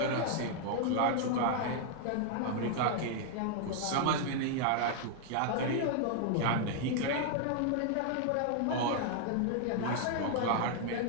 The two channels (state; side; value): different; both; correlation 0.00